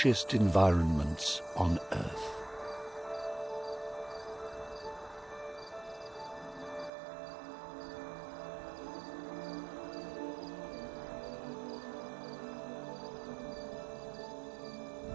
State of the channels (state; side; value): drops out; left; at 6.9 s